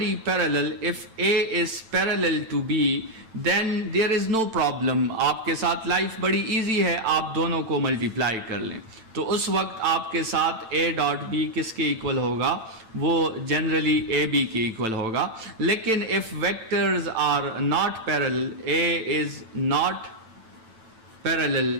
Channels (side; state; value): left; late; 8.9 ms